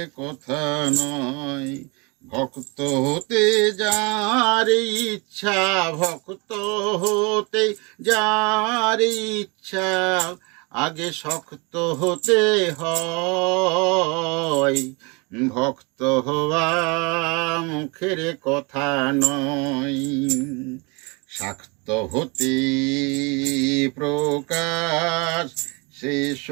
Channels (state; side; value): quieter; left; 29.5 dB